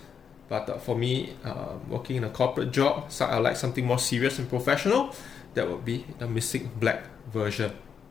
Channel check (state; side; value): quieter; right; 7.1 dB